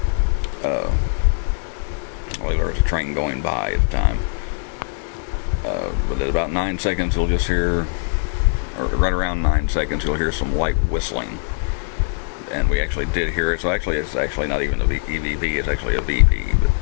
Well, there was a train going by at the time. But at about 9 seconds, you'll just hear, or right around 9 seconds, you'll hear some light whistling. and we actually did hear it. So actually, it's actually not even a EVP; it's actually a VP.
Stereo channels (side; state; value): right; silent; digital silence